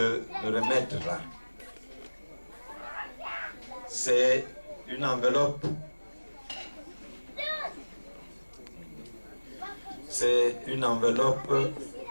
me remettre là. C'est une enveloppe. C'est une enveloppe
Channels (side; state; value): both; inverted; correlation -1.00